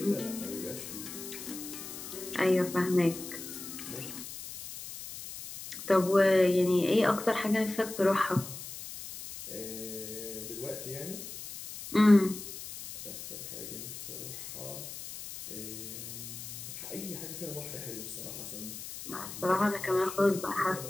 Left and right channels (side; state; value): left; noise; hiss, 10 dB below the sound